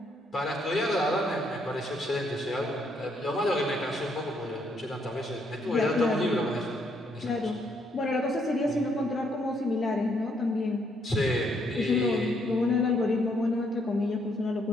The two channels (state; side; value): normal; both; correlation 0.72